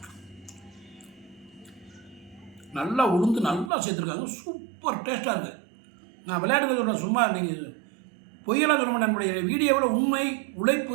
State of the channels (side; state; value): left; drops out; at 3.7 s